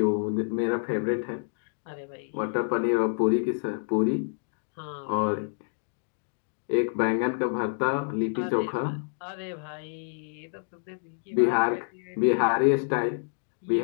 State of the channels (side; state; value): right; silent; digital silence